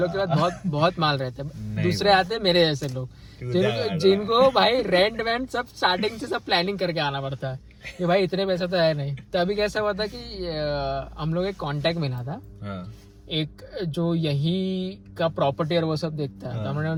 के बाद बहुत माल रहते हैं। दूसरे आते हैं मेरे जैसे लोग, जिनको भाई रेंट वेंट सब स्टार्टिंग से सब प्लानिंग करके आना पड़ता है कि भाई इतने पैसा तो है नहीं। तो अभी कैसा हुआ था कि हम लोग एक कांटेक्ट मिला था, एक जो यही का प्रॉपर्टी और वो सब देखता है। तो हमने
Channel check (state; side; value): identical; both; correlation 1.00